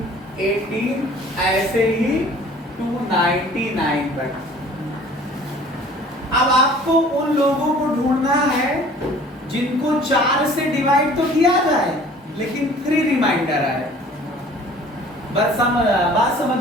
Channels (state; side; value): normal; both; correlation 0.50